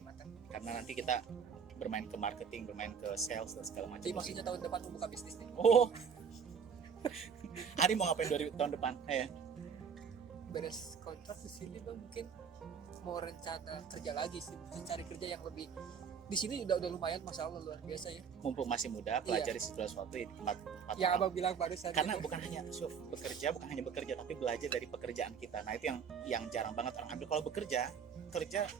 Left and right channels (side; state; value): left; quieter; 6.7 dB